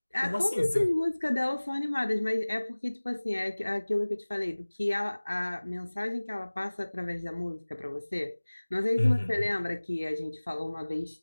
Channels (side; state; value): both; inverted; correlation -1.00